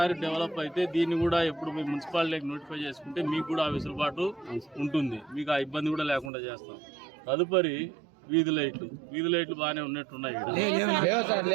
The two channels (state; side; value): drops out; left; at 6.3 s